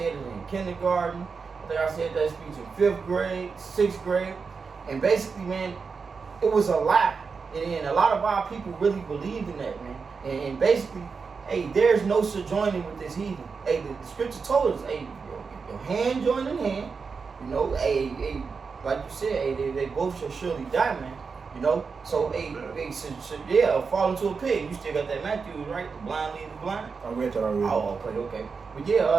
it in kindergarten. I think I said that speech in 5th grade, 6th grade, and basically, man, it was a lie. And a lot of our people really believed in that, man. And basically, hey, there's no sojourning with this heathen. Hey, the scripture told us, hey, your hand joined in hand. Like you said, hey, they both shall surely die, man. So fall into a pit. You still got that Matthew, right? The blind lead the blind. I read that already. Oh, okay. But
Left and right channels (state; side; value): quieter; left; 5.2 dB